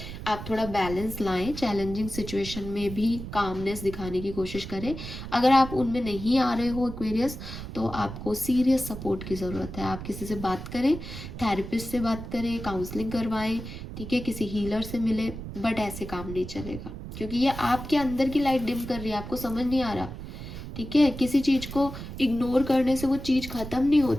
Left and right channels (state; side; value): noise; right; rumble, 9 dB below the sound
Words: आप थोड़ा बैलेंस लाएं, चैलेंजिंग सिचुएशन में भी कामनेस दिखाने की कोशिश करें। अगर आप उनमें नहीं आ रहे हो एक्वेरियस, तो आपको सीरियस सपोर्ट की ज़रूरत है। आप किसी से बात करें, थेरेपिस्ट से बात करें, काउंसलिंग करवाएं, ठीक है, किसी हीलर से मिले, बट ऐसे काम नहीं चलेगा क्योंकि ये आपके अंदर की लाइट डिम कर रही है, आपको समझ नहीं आ रहा। ठीक है, किसी चीज़ को इग्नोर करने से वो चीज़ ख़त्म नहीं